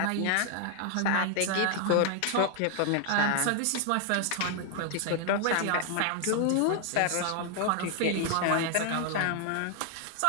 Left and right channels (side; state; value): both; different; correlation 0.00